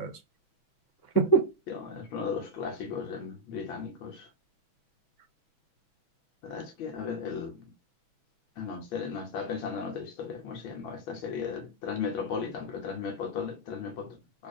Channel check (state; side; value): late; right; 6.1 ms